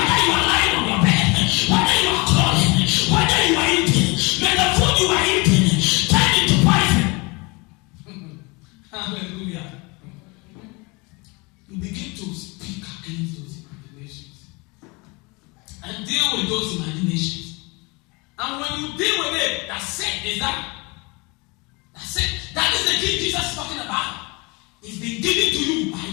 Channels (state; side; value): quieter; right; 27.3 dB